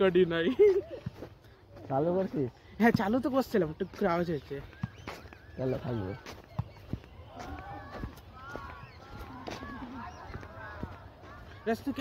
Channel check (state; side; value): identical; both; correlation 1.00